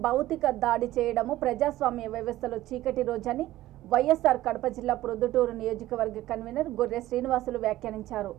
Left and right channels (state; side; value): quieter; left; 15.4 dB